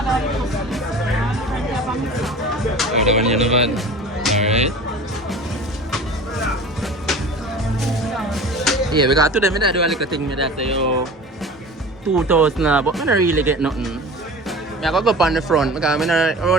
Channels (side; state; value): both; normal; correlation 0.38